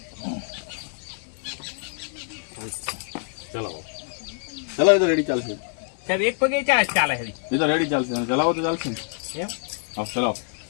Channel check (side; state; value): right; silent; 57 dB below the other